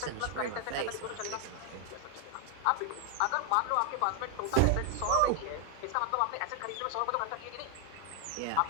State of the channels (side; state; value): both; different; correlation 0.00